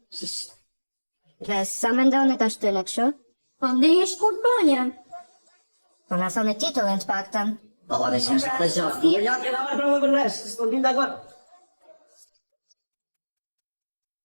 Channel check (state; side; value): inverted; both; correlation -1.00